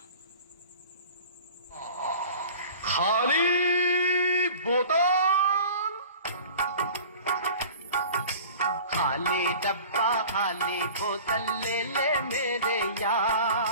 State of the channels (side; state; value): both; inverted; correlation -0.42